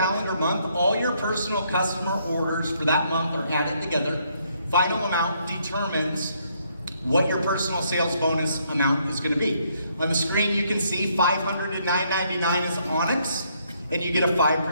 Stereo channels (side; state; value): both; inverted; correlation -0.71